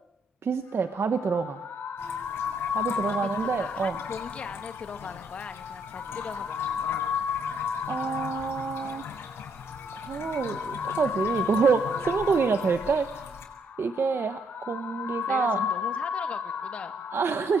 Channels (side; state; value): both; normal; correlation 0.71